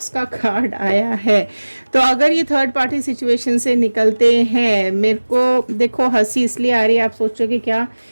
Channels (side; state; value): both; inverted; correlation -1.00